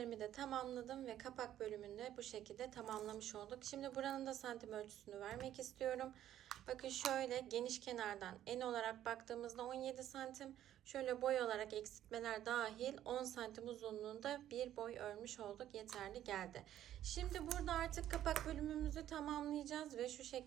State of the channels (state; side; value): quieter; left; 11.9 dB